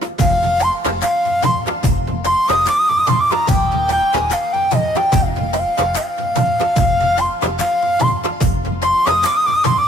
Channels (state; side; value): normal; both; correlation 0.68